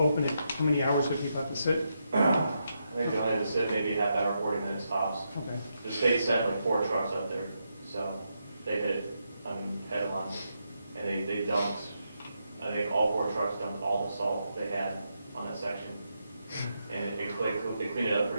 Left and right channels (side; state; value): both; inverted; correlation -0.83